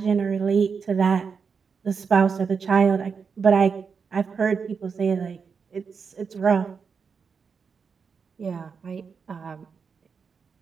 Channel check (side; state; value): left; quieter; 5.8 dB